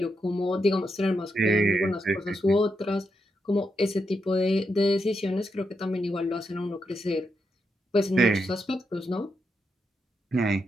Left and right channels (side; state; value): both; normal; correlation 0.83